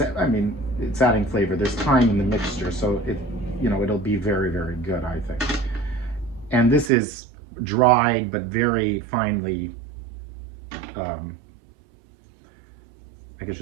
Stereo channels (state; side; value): drops out; left; at 6.9 s